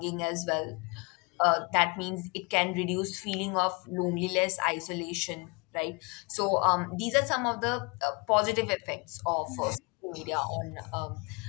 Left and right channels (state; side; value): quieter; right; 30.0 dB